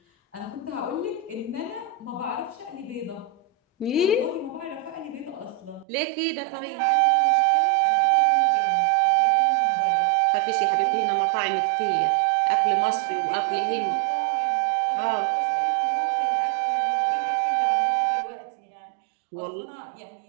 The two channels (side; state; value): left; drops out; at 5.9 s